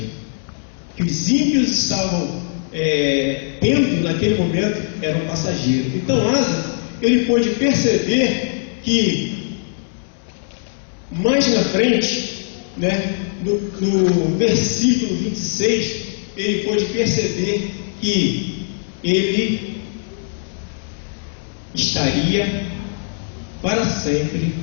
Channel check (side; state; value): right; silent; 66 dB below the other